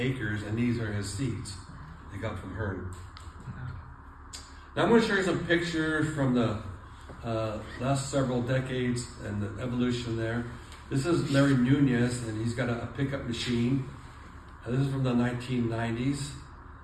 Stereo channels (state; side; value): identical; both; correlation 1.00